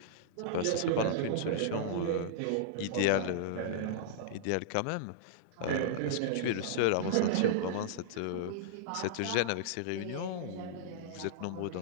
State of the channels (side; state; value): both; different; correlation -0.02